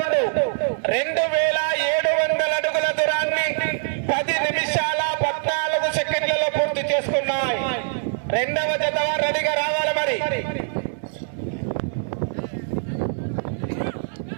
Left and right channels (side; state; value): left; silent; 63 dB below the other